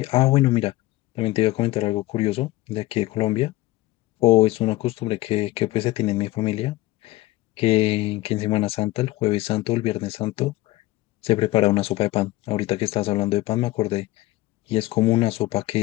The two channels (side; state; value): right; quieter; 18.0 dB